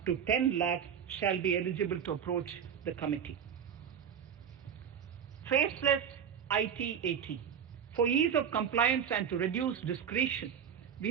to 10 lakh shall be eligible to approach the committee. Faceless IT-AT. For ease of compliance and to reduce discretion,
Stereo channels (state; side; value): quieter; left; 8.1 dB